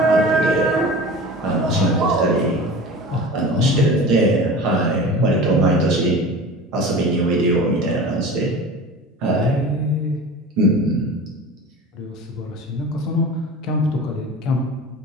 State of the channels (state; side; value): normal; both; correlation 0.36